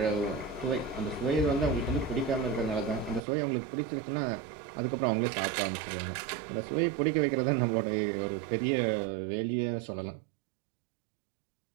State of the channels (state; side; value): drops out; left; at 3.2 s